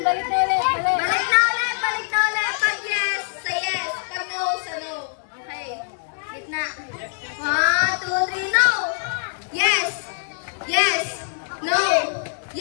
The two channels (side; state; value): right; silent; digital silence